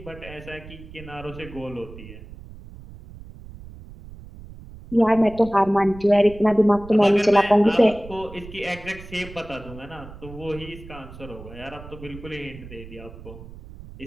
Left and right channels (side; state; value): right; noise; rumble, 16 dB below the sound